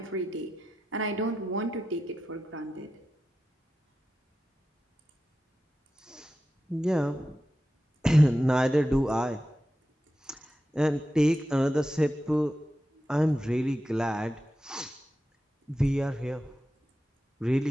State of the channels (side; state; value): both; normal; correlation 0.91